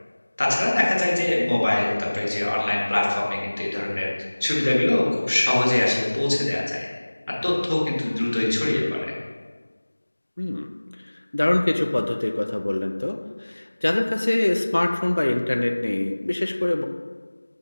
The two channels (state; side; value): inverted; both; correlation -1.00